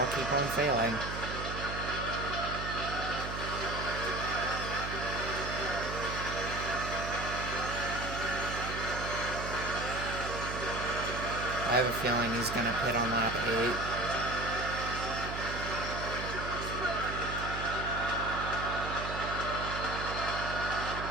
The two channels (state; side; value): noise; right; hum, 6 dB below the sound